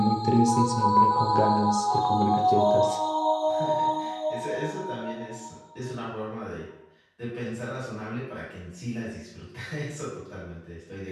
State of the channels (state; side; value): identical; both; correlation 1.00